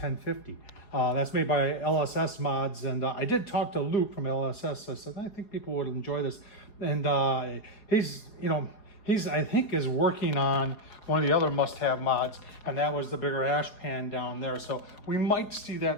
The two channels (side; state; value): right; late; 4.7 ms